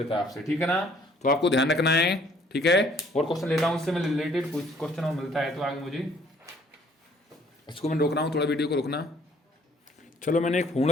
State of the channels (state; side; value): normal; both; correlation 0.60